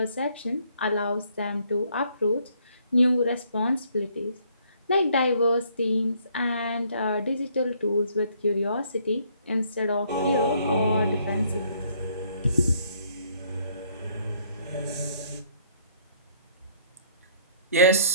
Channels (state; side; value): inverted; both; correlation -0.64